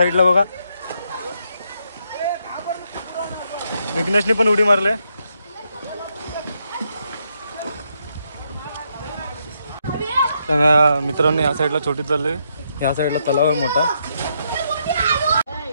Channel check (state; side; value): inverted; both; correlation -0.78